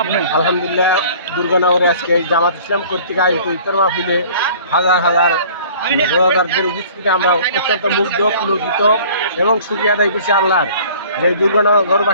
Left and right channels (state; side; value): inverted; both; correlation -0.49